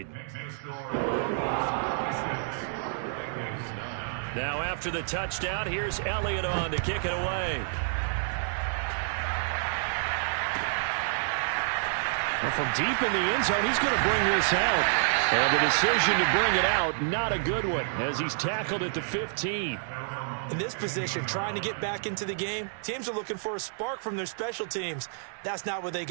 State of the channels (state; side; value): silent; left; digital silence